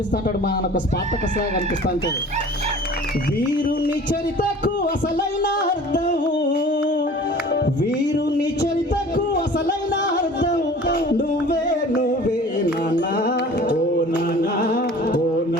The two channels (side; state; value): both; normal; correlation 0.45